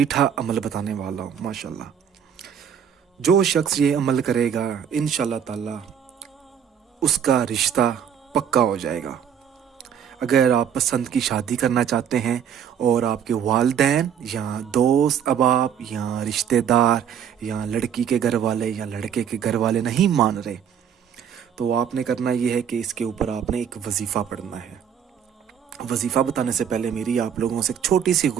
عمل بتانے والا ہوں۔ ماشاءاللہ جو شخص یہ عمل کرے گا انشاءاللہ تعالی اس کا رشتہ پکا ہو جائے گا۔ اگر آپ پسند کی شادی کرنا چاہتے ہیں اور آپ کے والدین یا دوست احباب یا رشتہ دار یا لڑکی کے گھر والے یا لڑکے کے گھر والے نہیں مان رہے، تو آپ نے کرنا یہ ہے کہ اس کے اوپر آپ نے ایک وظیفہ پڑھنا ہے۔ وظیفہ بتانے سے پہلے میری آپ لوگوں سے ایک چھوٹی سی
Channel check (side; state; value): left; quieter; 8.3 dB